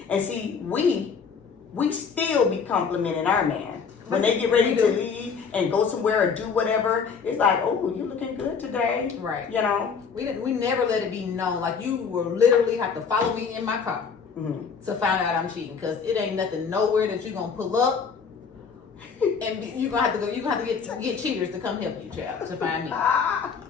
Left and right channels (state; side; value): quieter; right; 5.9 dB